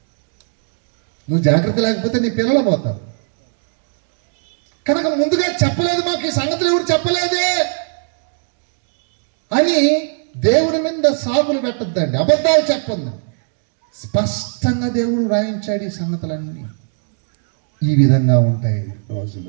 నువ్వు జాగ్రత్త లేకపోతే నీ పిల్లలు పోతారు. కనుక ముందుగా చెప్పలేదు, మాకు ఈ సంగతులు ఎవరు చెప్పలేదే అని దేవుడి మీద సాగులు పెట్టద్దండి, అబద్ధాలు చెప్పండి. స్పష్టంగా దేవుడు రాయించాడు ఈ సంగతులన్నీ ఈ విధంగా ఉంటాయి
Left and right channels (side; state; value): left; silent; digital silence